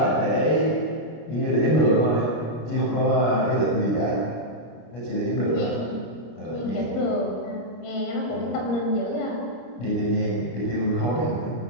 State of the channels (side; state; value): right; late; 26 ms